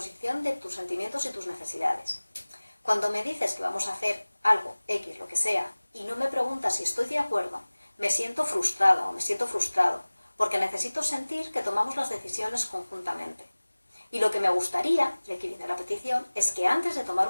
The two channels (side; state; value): both; inverted; correlation -1.00